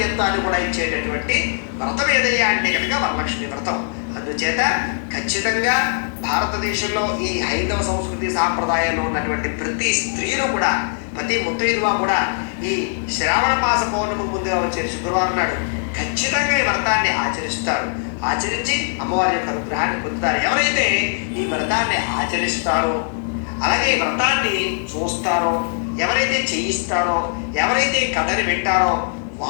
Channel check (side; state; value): right; silent; digital silence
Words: కూడా ఇచ్చేటటువంటి వ్రతం ఏదయ్యా అంటే కనుక వరలక్ష్మి వ్రతం. అందుచేత ఖచ్చితంగా భారతదేశంలో ఈ హైందవ సంస్కృతి సాంప్రదాయంలో ఉన్నటువంటి ప్రతి స్త్రీలు కూడా, ప్రతి ముత్తైదువ కూడా ఈ శ్రావణ మాస పౌర్ణమి ముందుగా వచ్చే శుక్రవారం నాడు ఖచ్చితంగా ఈ వ్రతాన్ని ఆచరిస్తారు. ఆచరించి అమ్మవారి యొక్క అనుగ్రహాన్ని పొందుతారు. ఎవరైతే ఈ వ్రతాన్ని ఆచరిస్తారో, అలాగే ఈ వ్రతాన్ని చూస్తారో, ఎవరైతే చేయిస్తారో, ఎవరైతే కథని వింటారో